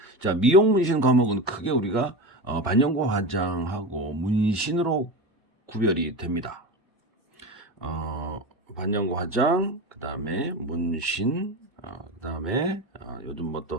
자, 미용 문신 과목은 크게 우리가 반영고 화장하고 문신으로 구별이 됩니다. 반영고 화장, 그 다음에 문신, 그 다음에 요즘 뭐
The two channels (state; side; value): normal; both; correlation 0.23